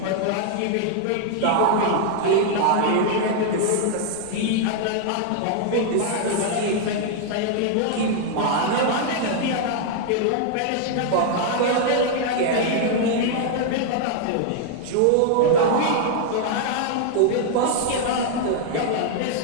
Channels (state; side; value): different; both; correlation 0.00